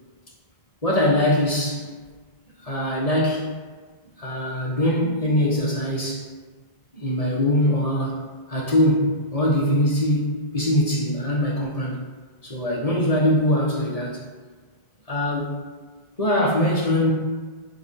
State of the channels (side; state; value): right; late; 1.7 ms